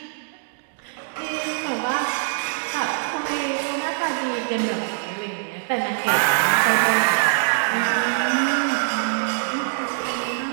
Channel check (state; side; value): silent; left; digital silence